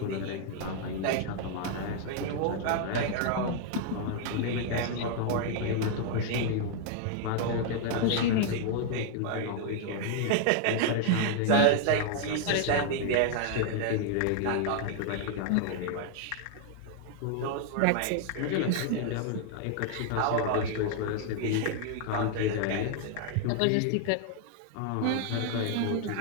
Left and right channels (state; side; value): different; both; correlation 0.00